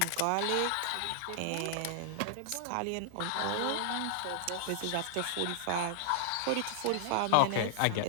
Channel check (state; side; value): different; both; correlation -0.01